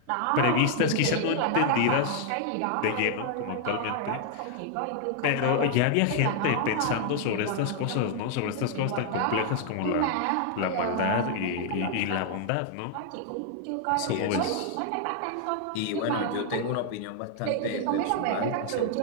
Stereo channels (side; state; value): both; different; correlation 0.00